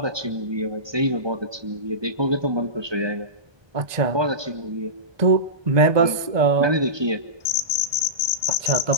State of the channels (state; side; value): late; left; 1.2 ms